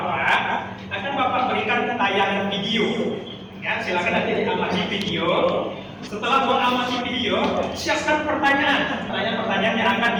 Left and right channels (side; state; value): both; identical; correlation 1.00